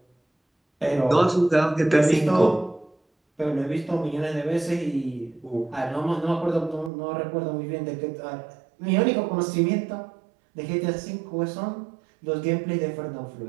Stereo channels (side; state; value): left; drops out; at 6.9 s